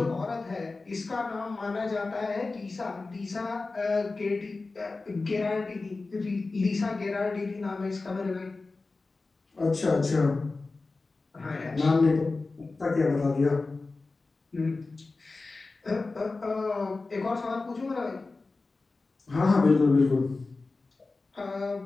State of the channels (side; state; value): right; quieter; 3.7 dB